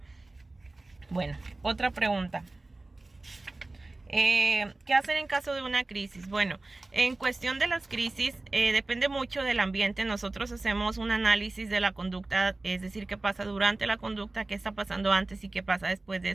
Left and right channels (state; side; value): quieter; left; 3.0 dB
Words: Bueno, otra pregunta. ¿Qué hacer en caso de una crisis? Bueno, en cuestión de las crisis, depende mucho del ambiente. Nosotros hacemos un análisis de la conducta, es decir, qué pasa durante la conducta, qué está pasando antes y qué pasa después de